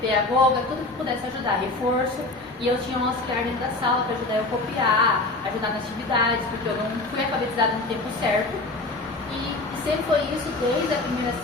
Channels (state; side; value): quieter; right; 3.0 dB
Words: pedagoga, tudo que pudesse ajudar, reforço. E eu tinha um auxiliar dentro da sala para ajudar eu a copiar, ajudar nas atividades, porque eu não fui alfabetizada no tempo certo. E sempre foi isso desde a primeira